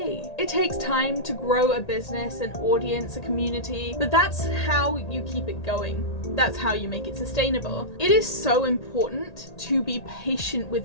It takes time to grow a business, an audience, a community, but that's how you keep it going. That's how you make it sustainable. It is so important to be patient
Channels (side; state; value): right; late; 1.8 ms